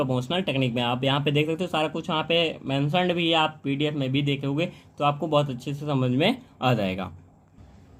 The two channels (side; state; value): both; identical; correlation 1.00